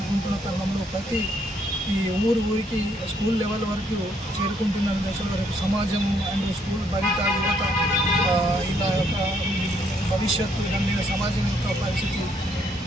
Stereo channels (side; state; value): both; normal; correlation 0.70